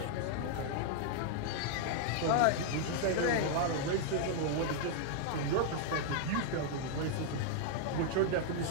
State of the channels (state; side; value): different; both; correlation -0.01